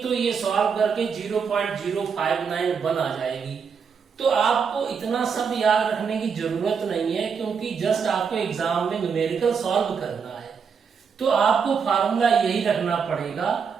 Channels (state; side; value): quieter; left; 6.3 dB